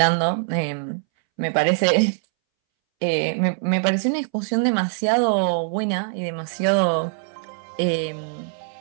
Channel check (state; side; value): silent; left; 63 dB below the other